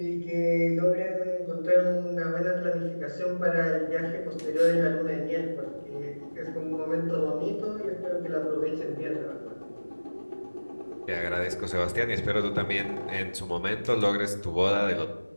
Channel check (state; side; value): inverted; both; correlation -1.00